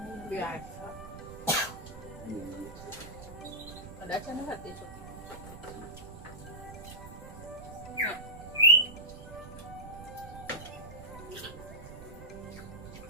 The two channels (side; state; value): right; noise; rumble, 13 dB below the sound